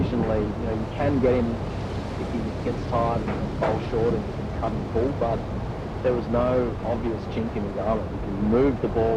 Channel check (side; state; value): both; identical; correlation 1.00